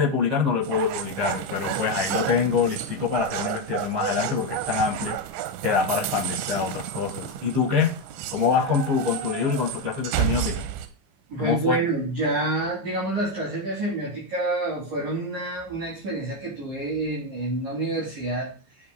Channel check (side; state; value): left; late; 15 ms